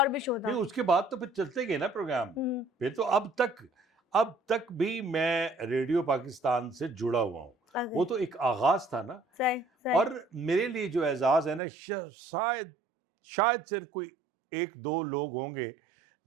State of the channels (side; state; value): left; drops out; at 11.6 s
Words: भी शो नहीं, था? उसके बाद तो फिर चलते गए ना प्रोग्राम। हुँ, फिर तो अब तक भी मैं रेडियो पाकिस्तान से जुड़ा हुआ हूँ। ओके। वो तो एक आगाज़ था ना। सही, सही। और मेरे लिए जो एज़ाज़ है ना, शायद शायद सिर्फ़ कोई 1-2 लोग होंगे